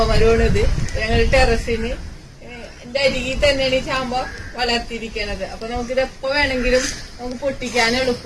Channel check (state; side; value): identical; both; correlation 1.00